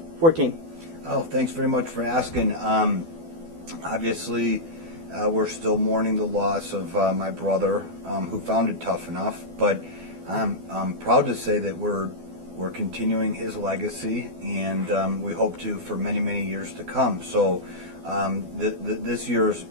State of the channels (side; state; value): left; late; 12 ms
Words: Oh, thanks very much for asking. Obviously, we're still mourning the loss of my brother, who founded Tuff-n-uff, but I'm proud to say that we're continuing his legacy, and we hope to for many, many years to come. So this year has